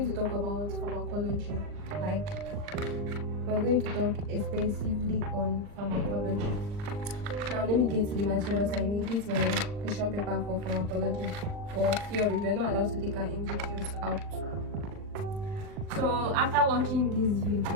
to talk about pharmacology. We're going to talk extensively on pharmacology. Now, let me get to the materials I need. This is my question paper for pharmacology. For theory, we're not allowed to take our MCQs out. So, after watching this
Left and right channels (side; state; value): left; late; 39 ms